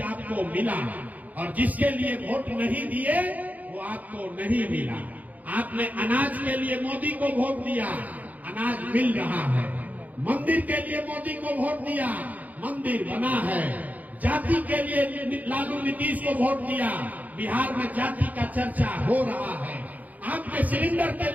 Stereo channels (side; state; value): left; late; 0.079 ms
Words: आपको मिला, और जिसके लिए वोट नहीं दिए वो आपको नहीं मिला। आपने अनाज के लिए मोदी को वोट दिया, अनाज मिल रहा है। मंदिर के लिए मोदी को वोट दिया, मंदिर बना है। जाति के लिए लालू नीतीश को वोट दिया, बिहार में जाति का चर्चा हो रहा है। आपने सिलेंडर के